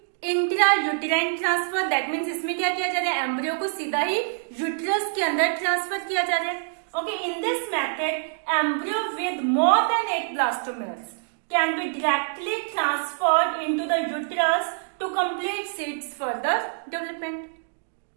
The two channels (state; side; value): silent; left; digital silence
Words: intra uterine transfer. That means इसमें क्या किया जा रहा है, एम्ब्रियो को सीधा ही यूट्रस के अंदर ट्रांसफर किया जा रहा है. Okay, in this method embryo with more than 8 blastomeres can be directly transferred into the uterus to complete its further development.